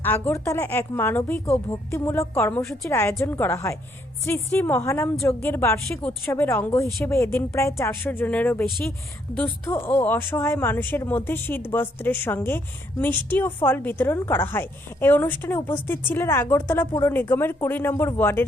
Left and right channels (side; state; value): both; normal; correlation 0.71